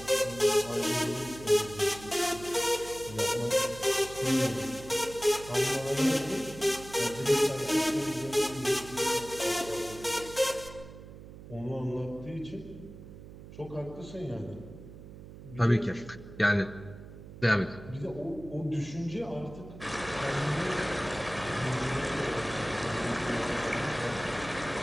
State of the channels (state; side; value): noise; right; hum, 15 dB below the sound